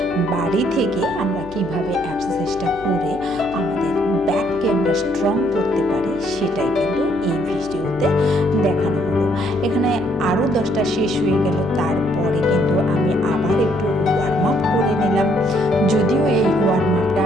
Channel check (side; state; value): left; noise; hum, 19 dB below the sound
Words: বাড়ি থেকে আমরা কিভাবে এক্সারসাইজটা করে আমাদের ব্যাককে আমরা স্ট্রং করতে পারি সেটাই কিন্তু এই ভিডিওতে দেখানো হলো। এখানে আরও 10টা শেষ হয়ে গেল। তারপরে কিন্তু আমি আবার একটু ওয়ার্ম আপ করে নিলাম। যদিও এই ওয়ার্ম আপটা